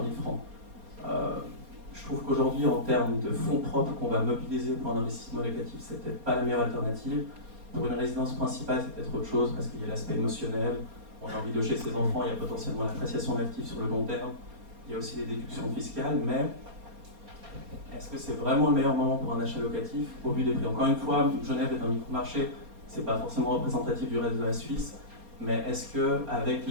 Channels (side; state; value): left; late; 4.3 ms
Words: 000 francs. Je trouve qu'aujourd'hui, en termes de fonds propres qu'on va mobiliser pour un investissement locatif, c'est peut-être pas la meilleure alternative. Pour une résidence principale, c'est peut-être autre chose, parce qu'il y a l'aspect émotionnel, on a envie de loger ses enfants, il y a potentiellement l'appréciation de l'actif sur le long terme, il y a aussi les déductions fiscales, mais est-ce que c'est vraiment le meilleur moment pour un achat locatif au vu des prix? Encore une fois, Genève est un micro-marché, c'est pas forcément représentatif du reste de la Suisse, mais est-ce qu'avec